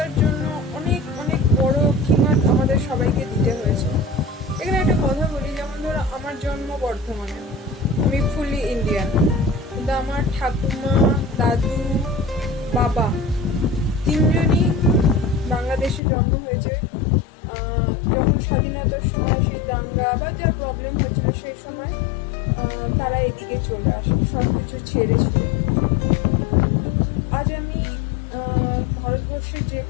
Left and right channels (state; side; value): drops out; right; at 16.0 s